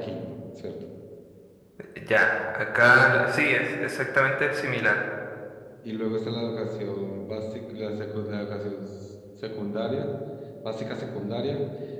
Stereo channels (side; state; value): both; identical; correlation 1.00